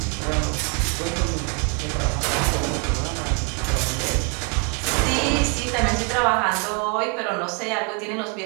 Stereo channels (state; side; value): quieter; left; 35.3 dB